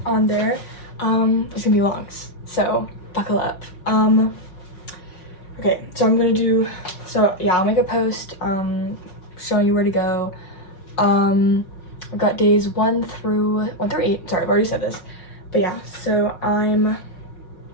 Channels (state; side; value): late; right; 5.5 ms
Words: gonna be long, so buckle up. Okay, so I'll make a post showing you where to go. I've got days 1 through 8. Sorry, I've already said this. But yeah, so I'm